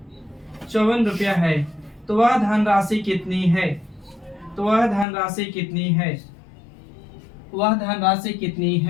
54 रुपया है, तो वह धनराशि कितनी है? तो वह धनराशि कितनी है? वह धनराशि कितनी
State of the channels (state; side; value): drops out; right; at 5.1 s